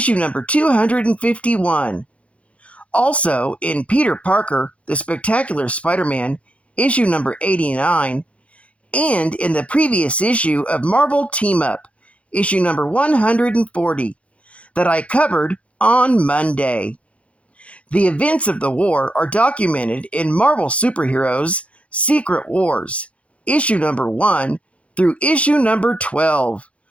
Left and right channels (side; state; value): right; late; 0.063 ms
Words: number 251. Also in Peter Parker, The Spectacular Spider-Man, issue number 89, and in the previous issue of Marvel Team-Up, issue number 140, that I covered on Monday. The events of the war are documented in Marvel Superheroes Secret Wars, issue number 1 through issue number 12,